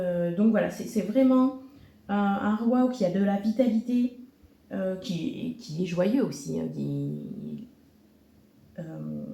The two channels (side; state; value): both; identical; correlation 1.00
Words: voilà, c'est vraiment un roi qui a de la vitalité, qui est joyeux aussi. Hein,